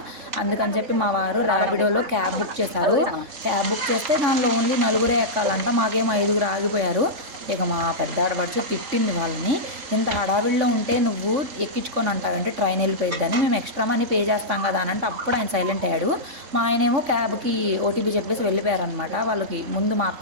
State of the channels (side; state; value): left; late; 3.5 ms